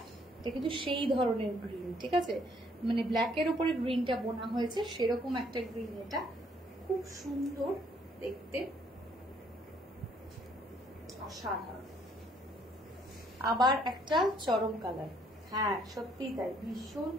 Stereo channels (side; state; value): both; normal; correlation 0.65